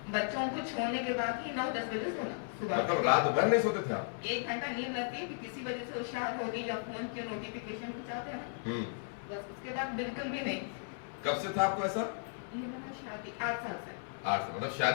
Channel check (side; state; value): right; silent; 54 dB below the other